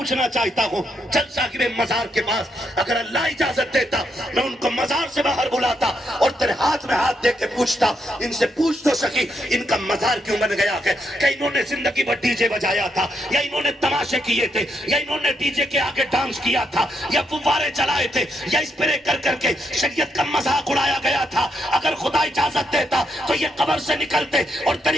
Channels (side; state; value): both; normal; correlation 0.79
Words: چاہتا ہوں, چل صاحب مزار کے پاس اگر اللہ اجازت دیتا میں ان کو مزار سے باہر بلاتا اور تیرے ہاتھ میں ہاتھ دے کے پوچھتا, ان سے پوچھ تو سکی ان کا مزار کیوں بن گیا ہے؟ کہ انہوں نے زندگی بھر ڈی جے بجایا تھا, یا انہوں نے تماشے کیے تھے, یا انہوں نے ڈی جے کے آگے ڈانس کیا تھا, یا فوارے چلائے تھے, یا اسپرے کر کر کے شریعت کا مذاق اڑایا گیا تھا. اگر خدا اجازت دیتا تو یہ قبر سے نکلتے اور